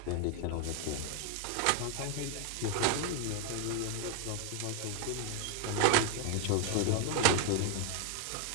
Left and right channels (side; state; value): both; different; correlation 0.00